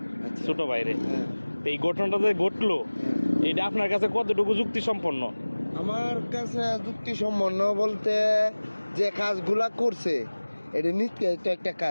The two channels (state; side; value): inverted; both; correlation -1.00